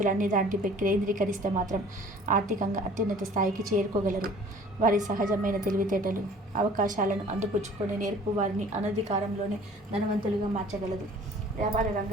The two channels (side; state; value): both; normal; correlation 0.50